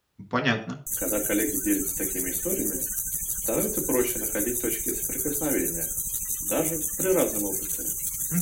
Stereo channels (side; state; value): both; identical; correlation 1.00